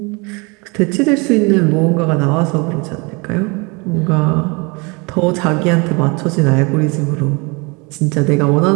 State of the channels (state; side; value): quieter; left; 29.0 dB